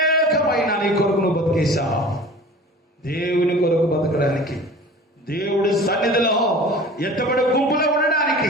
నీ కొరకు నువ్వు బతికేశావు. దేవుని కొరకు బతకడానికి, దేవుడి సన్నిధిలో ఎత్తబడే గుంపులో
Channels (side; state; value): both; normal; correlation 0.41